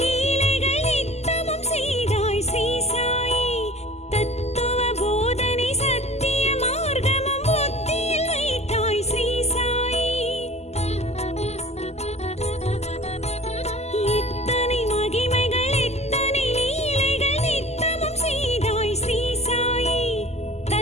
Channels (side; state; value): right; late; 0.31 ms